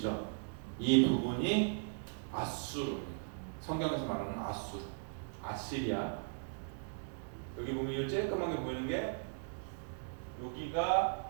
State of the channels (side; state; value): left; silent; digital silence